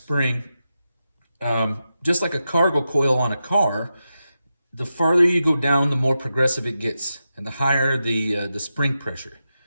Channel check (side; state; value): both; inverted; correlation -0.89